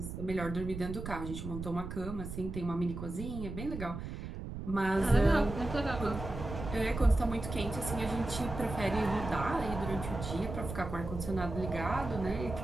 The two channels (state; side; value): noise; right; rumble, 7 dB below the sound